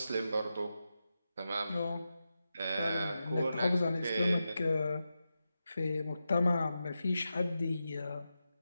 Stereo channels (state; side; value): inverted; both; correlation -0.90